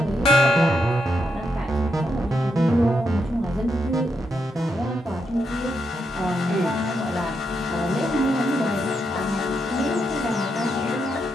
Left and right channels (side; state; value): both; normal; correlation 0.82